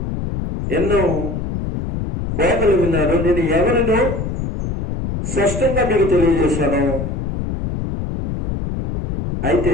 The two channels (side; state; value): left; noise; rumble, 4 dB below the sound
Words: ఎన్నో బోధలు విన్నారు. నేను ఎవరినో స్పష్టంగా మీకు తెలియజేశాను.